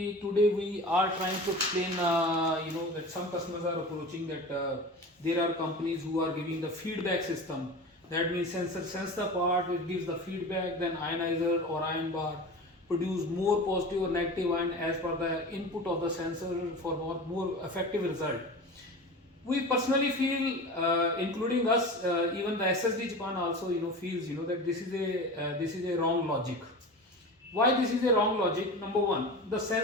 today we are trying to explain that some customers are approaching that there are companies who are giving the feedback system. That means sensor sense the part, it gives the feedback, then ionizer or ion bar produce more positive or negative ion as per the input of the sensor for more effective result. We personally feel, including us, even the SSD Japan also feels that this is a wrong logic. Why this is a wrong logic? Number one, the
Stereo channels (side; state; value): both; normal; correlation 0.32